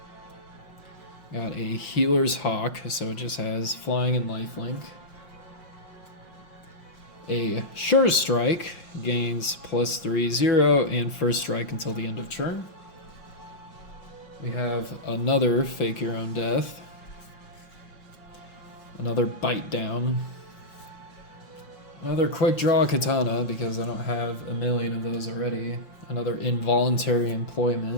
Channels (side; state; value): right; late; 5.7 ms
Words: Got a Healer's Hawk, so it just has flying and lifelink. A Sure Strike, gains +3/0 and first strike until the end of turn. We have another Fake Your Own Death. Another Bite Down. Another Quick Draw Katana, because I don't have a million of those already. Another Involuntary